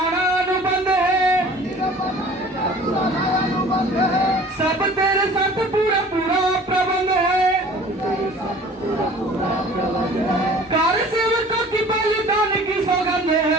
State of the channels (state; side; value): normal; both; correlation 0.47